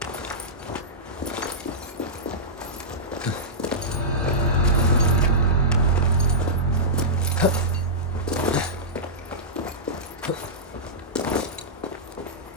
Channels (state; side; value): normal; both; correlation -0.14